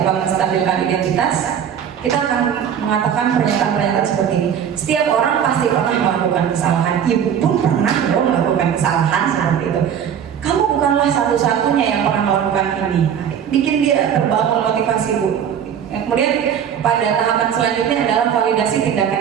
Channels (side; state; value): left; quieter; 8.6 dB